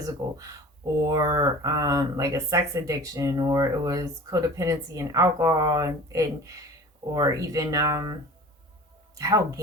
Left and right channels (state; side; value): normal; both; correlation 0.41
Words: or like a sex addiction, or it was codependency and alcohol, and or even how